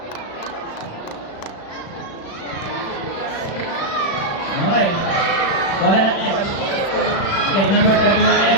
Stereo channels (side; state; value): right; late; 36 ms